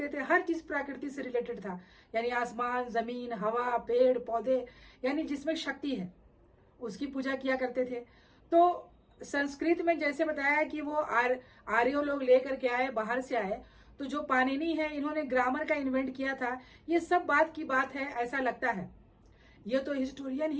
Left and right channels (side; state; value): both; identical; correlation 1.00